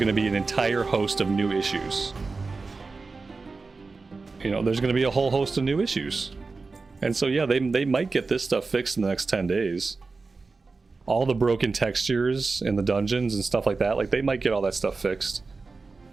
to be an entire host of new issues. You know, there's going to be a whole host of new issues. And so, yeah, they might get this stuff fixed in the next 10 days. All the broken textures in the dungeons and stuff like that, like, they might get all that stuff fixed.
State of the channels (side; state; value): left; quieter; 4.1 dB